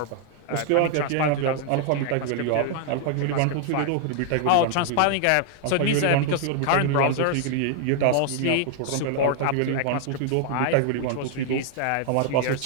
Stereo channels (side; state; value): both; different; correlation 0.00